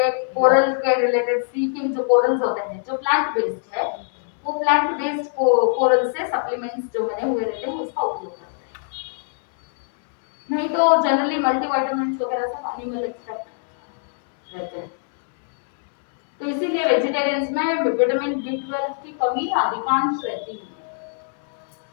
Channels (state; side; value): silent; right; digital silence